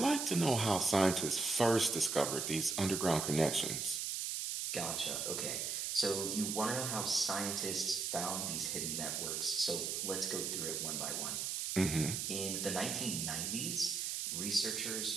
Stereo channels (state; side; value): noise; right; hiss, 1 dB below the sound